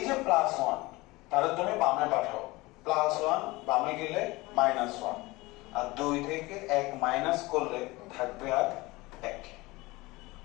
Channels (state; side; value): quieter; right; 21.6 dB